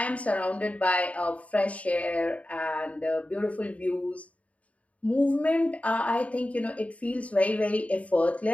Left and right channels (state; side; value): late; right; 0.067 ms